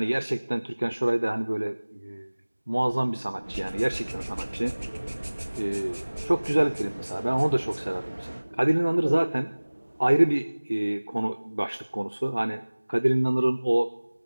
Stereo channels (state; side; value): inverted; both; correlation -1.00